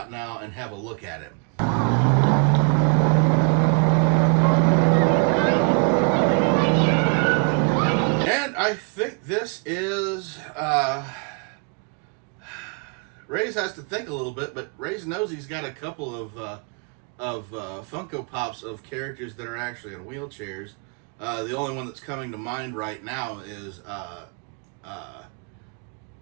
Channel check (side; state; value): left; quieter; 38.4 dB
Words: now and have a look at him. And I think this is, Raze has to think a little bit, but Raze knows he's got a couple of Funko Pops of characters that are actually in wheelchairs. The only one that's coming to mind right now is